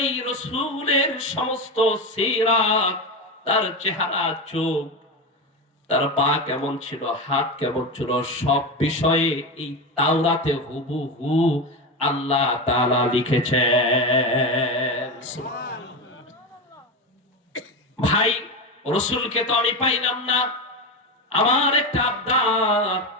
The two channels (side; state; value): both; normal; correlation 0.18